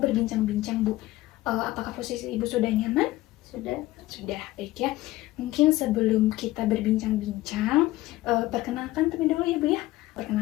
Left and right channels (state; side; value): quieter; right; 17.4 dB